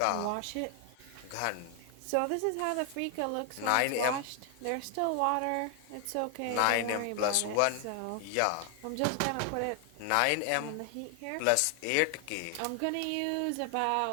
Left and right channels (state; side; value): different; both; correlation 0.00